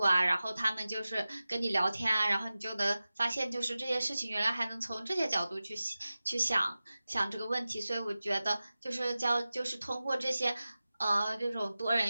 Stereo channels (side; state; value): both; inverted; correlation -0.96